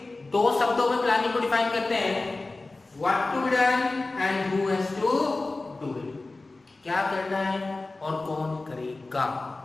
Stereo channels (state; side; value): quieter; right; 3.3 dB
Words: दो शब्दों में प्लानिंग को डिफाइन करते हैं, what to be done and who has to do it. क्या करना है और कौन करेगा,